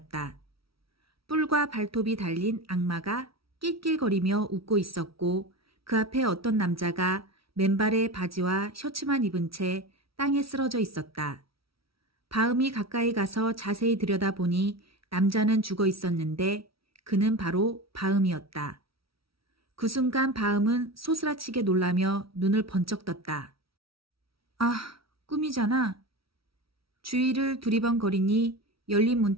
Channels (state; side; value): late; left; 0.75 ms